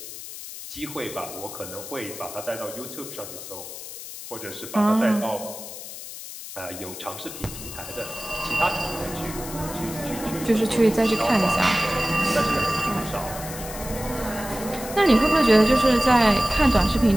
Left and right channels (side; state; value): left; noise; hiss, 11 dB below the sound